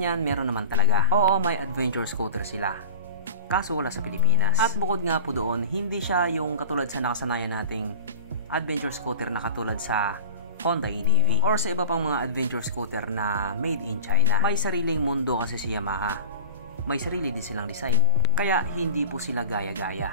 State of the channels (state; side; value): inverted; both; correlation -0.33